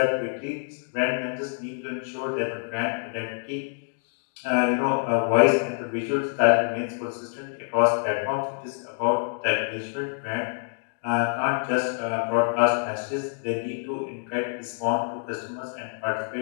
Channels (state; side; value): silent; right; 61 dB below the other